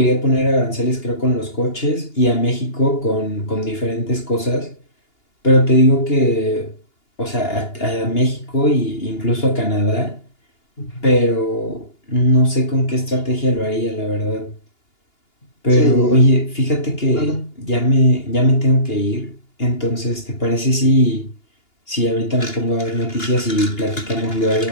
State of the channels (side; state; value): right; late; 2.8 ms